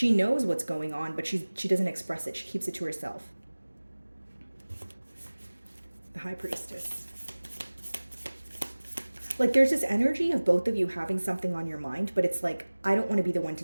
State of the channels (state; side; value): inverted; both; correlation -1.00